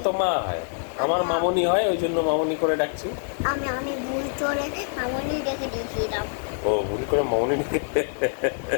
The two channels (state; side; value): silent; right; digital silence